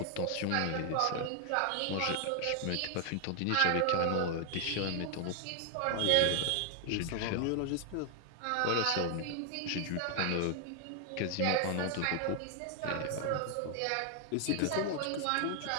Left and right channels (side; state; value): both; different; correlation 0.00